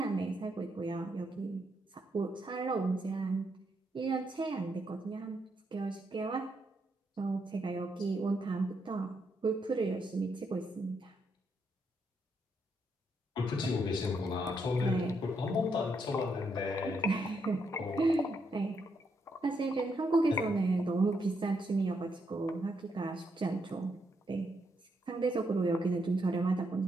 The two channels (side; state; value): both; normal; correlation 0.78